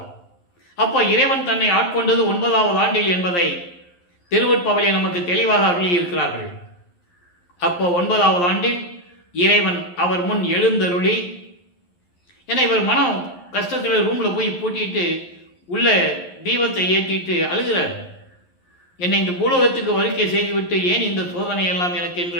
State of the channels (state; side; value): late; right; 11 ms